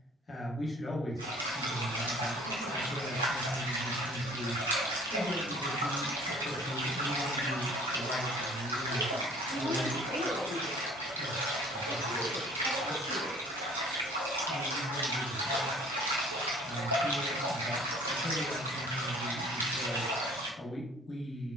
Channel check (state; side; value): normal; both; correlation 0.52